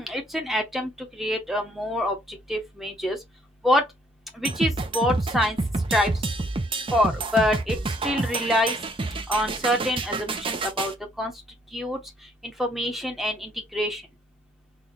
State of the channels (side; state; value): both; normal; correlation 0.66